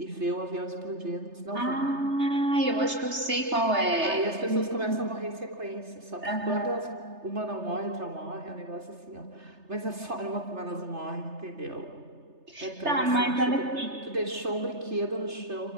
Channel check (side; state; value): left; late; 3.3 ms